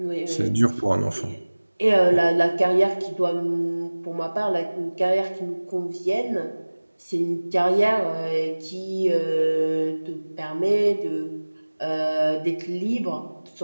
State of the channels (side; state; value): both; inverted; correlation -1.00